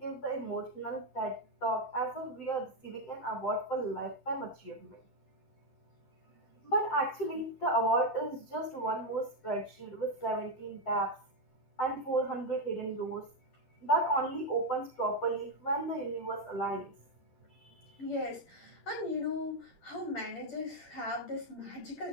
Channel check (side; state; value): right; late; 10 ms